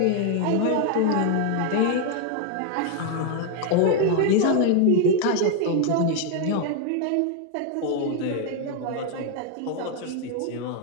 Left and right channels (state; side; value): different; both; correlation 0.00